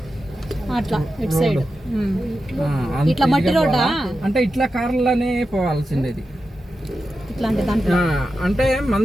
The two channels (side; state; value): both; normal; correlation 0.90